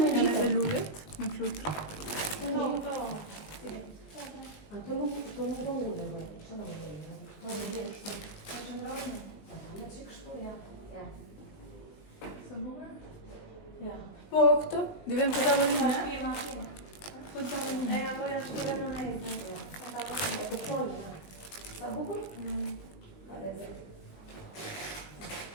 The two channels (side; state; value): right; late; 20 ms